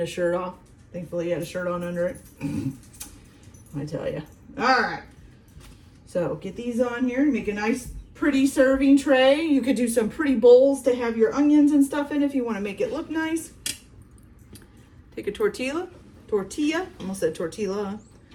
shirt off. Thankfully he had a shirt on under it. I tell you. All right. So get these on here, make a nice pretty serving tray. You could do some pretty bowls to have your onions and stuff in if you want to make it look nice. Take a tortilla, almost said tortilla.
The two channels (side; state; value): both; identical; correlation 1.00